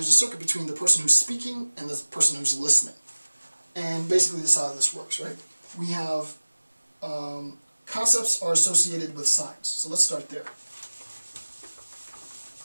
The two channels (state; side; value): inverted; both; correlation -1.00